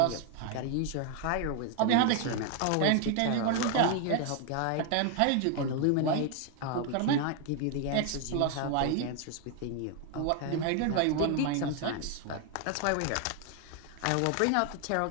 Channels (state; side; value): different; both; correlation 0.00